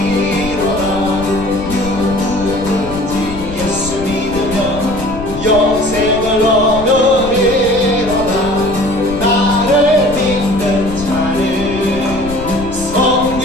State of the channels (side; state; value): left; noise; rumble, 11 dB below the sound